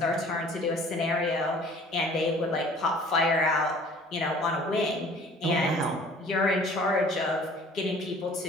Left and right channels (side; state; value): both; normal; correlation 0.50